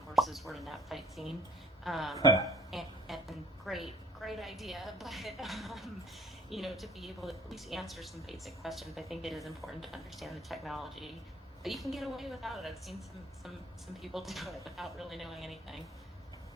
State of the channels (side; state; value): both; normal; correlation 0.56